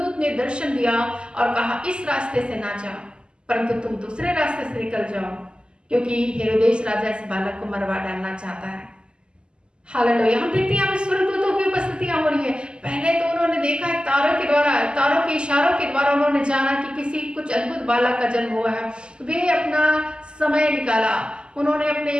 ने दर्शन दिया और कहा इस रास्ते से ना जाओ, परंतु तुम दूसरे रास्ते से निकल जाओ, क्योंकि हेरोदेस राजा इस बालक को मरवा डालना चाहता है। हालेलुया। हम देखते हैं यहाँ पे स्वर्गदूतों की उपस्थितियां हो रही है। पहले तो उन्होंने देखा है तारों के द्वारा, तारों के इशारों के द्वारा उन्होंने जाना कि किसी कुछ अद्भुत बालक का जन्म हुआ है। वे अपना समय निकाला, उन्होंने अपने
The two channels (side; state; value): left; late; 0.049 ms